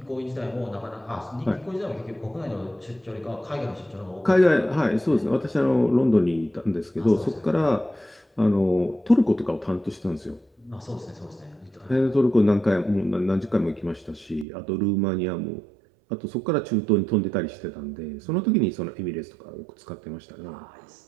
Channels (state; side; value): drops out; left; at 14.5 s